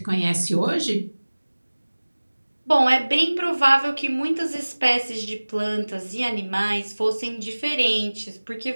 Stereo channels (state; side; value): inverted; both; correlation -1.00